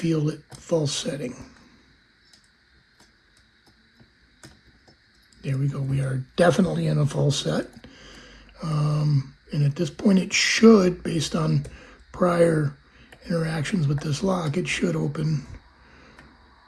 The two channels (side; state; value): both; identical; correlation 1.00